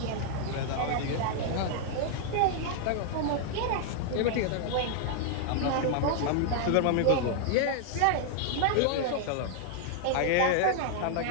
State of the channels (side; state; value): both; different; correlation 0.00